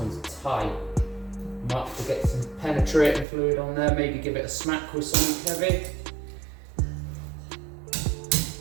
tight. Might have to get some penetrating fluid on there, maybe give it a smack with something heavy.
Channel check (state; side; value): drops out; left; at 3.2 s